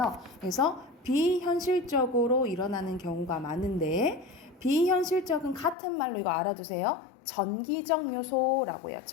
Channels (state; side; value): drops out; right; at 5.8 s